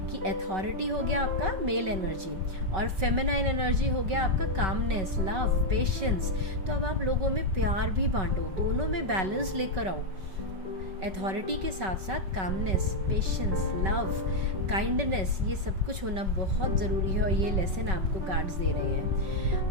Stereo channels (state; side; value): late; left; 5.3 ms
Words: कि अथॉरिटी हो गया आपका मेल एनर्जी, और फेमिनाइन एनर्जी हो गया आपका कामनेस, लव, पेशेंस। तो अब आप लोगों में प्यार भी बांटो, दोनों में बैलेंस लेकर आओ। अथॉरिटी के साथ साथ कामनेस, पेशेंस, लव, काइंडनेस, ये सब कुछ होना बहुत ज़रूरी है, और ये लेसन आपको कार्ड्स दे रहे